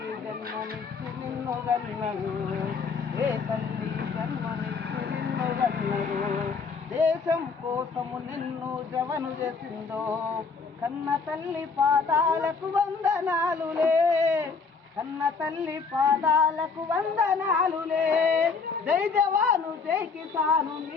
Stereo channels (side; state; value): right; quieter; 5.0 dB